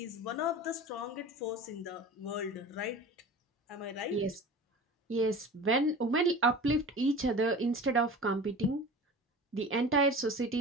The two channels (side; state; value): both; normal; correlation 0.36